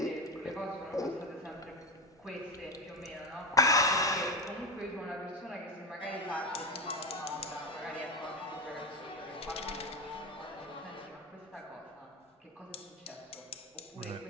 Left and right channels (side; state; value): both; normal; correlation 0.18